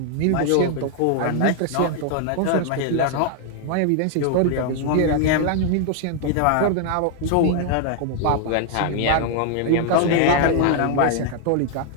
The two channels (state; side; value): different; both; correlation 0.00